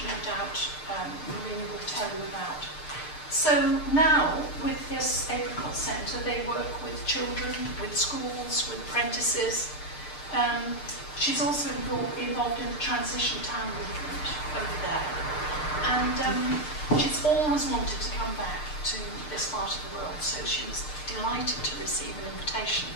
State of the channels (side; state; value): right; late; 6.6 ms